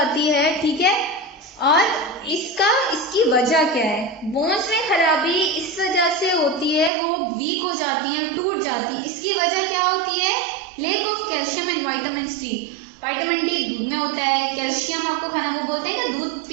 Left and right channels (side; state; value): left; drops out; at 6.9 s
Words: है, ठीक है, और इसकी वजह क्या है। बोन्स में खराबी इस वजह से होती है, वो वीक हो जाती हैं, टूट जाती हैं। इसकी वजह क्या होती है, lack of calcium and vitamin C. Vitamin D दूध में होता है, कैल्शियम आपको खाना, वो बोलते हैं कि दूध